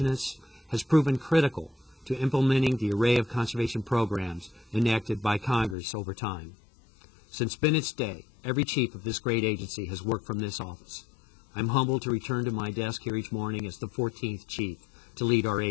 has proven critical to implementing the array of conservation programs enacted by Congress over time. Since Bennett's day, every chief of this great agency has worked from this office. I'm humbled to return to my desk here each morning as the 14th chief to lead our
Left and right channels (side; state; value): right; drops out; at 5.8 s